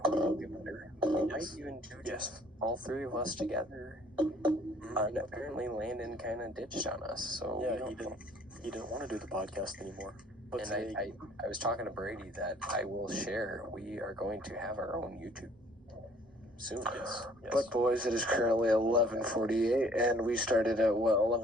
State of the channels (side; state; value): both; normal; correlation 0.57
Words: we will get better. We might even do just all three of us together. And apparently Landon kind of ditched on us, so we Yeah, don't he didn't want to do the podcast anymore. But And today, I was talking to Brady that I will share. We are going to have our own YouTube soon. yes. But boys, it is currently 11:48, and we started at what